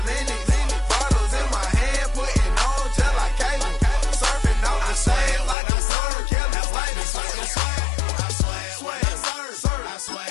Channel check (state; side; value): drops out; right; at 5.6 s